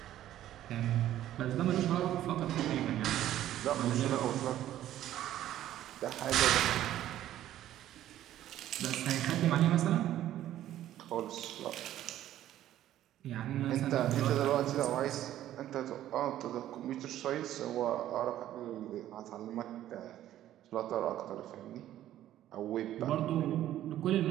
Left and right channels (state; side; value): quieter; left; 12.7 dB